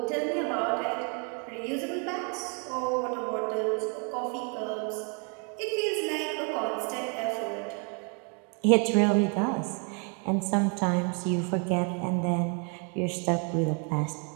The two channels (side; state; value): left; quieter; 38.3 dB